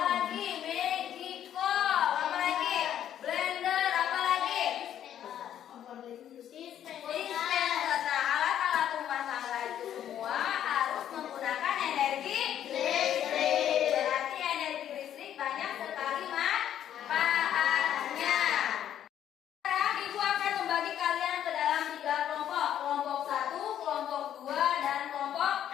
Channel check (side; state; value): right; quieter; 10.5 dB